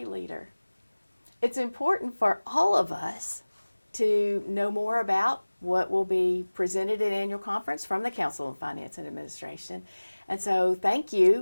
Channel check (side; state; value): both; inverted; correlation -1.00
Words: leader. It's important for all of us to know more about what will be presented at annual conference from the Council on Finance and Administration. And so thank